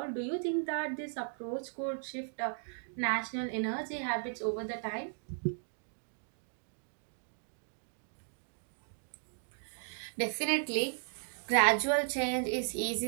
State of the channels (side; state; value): left; silent; digital silence